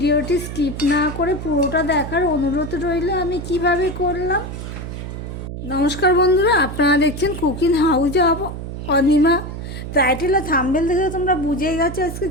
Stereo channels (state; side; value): noise; right; hum, 8 dB below the sound